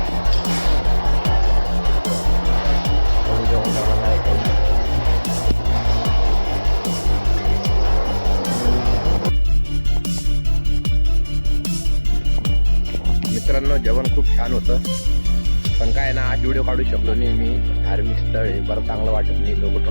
जेवण करायला काय मित्रांनो जेवण खूप छान होतं. पण काय ना आज व्हिडिओ काढू शकलो नाही मी. धार्मिक स्थळ आहे, बरं चांगलं वाटत नाही लोक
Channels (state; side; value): inverted; both; correlation -1.00